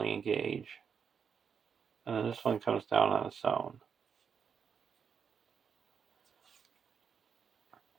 engage. And then this one comes down on its own.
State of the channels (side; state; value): left; quieter; 6.8 dB